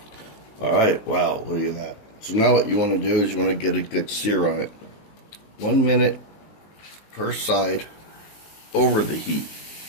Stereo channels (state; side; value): late; right; 19 ms